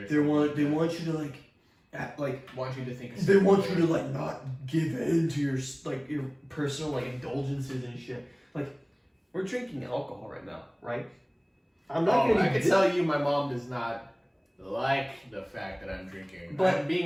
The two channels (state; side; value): identical; both; correlation 1.00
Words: or they want you to like, act, like. want you to think. They want you to like not give in to your personal like indulgences and shit. Like, we're drinking alcohol right now, right? I'm not gonna. I can tell you, my mom does not like the fact that I'm drinking. But- I'm